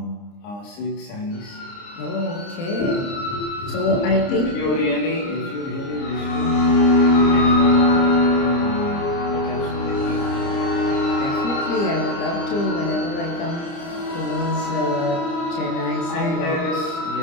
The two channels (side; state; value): right; late; 29 ms